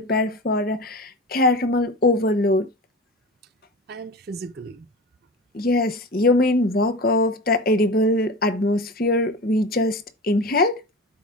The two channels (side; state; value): both; normal; correlation 0.30